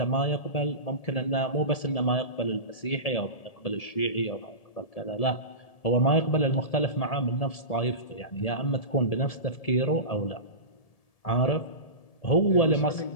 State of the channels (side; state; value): right; late; 1.7 ms